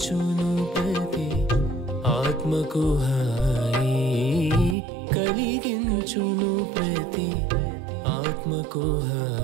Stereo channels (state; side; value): drops out; left; at 4.8 s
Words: ప్రతి ఆత్మకు హాయి కలిగించును ప్రతి ఆత్మకు